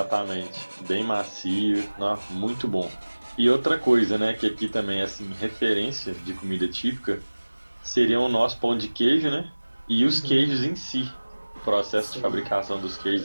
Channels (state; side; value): inverted; both; correlation -1.00